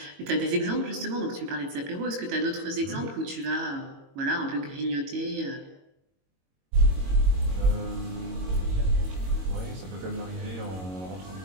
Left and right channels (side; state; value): left; late; 22 ms